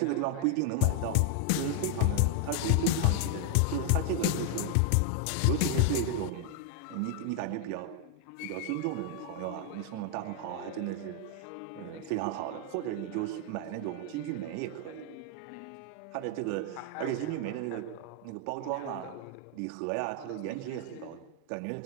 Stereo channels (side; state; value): both; different; correlation 0.01